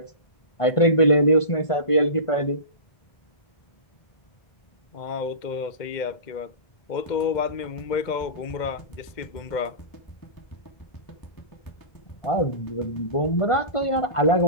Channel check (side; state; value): right; late; 1.5 ms